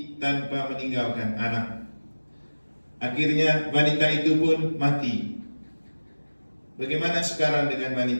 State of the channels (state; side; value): inverted; both; correlation -1.00